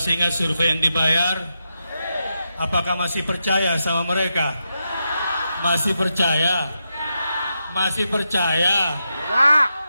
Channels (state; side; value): inverted; both; correlation -0.86